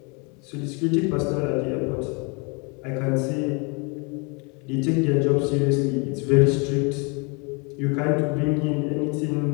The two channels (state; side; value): quieter; right; 31.9 dB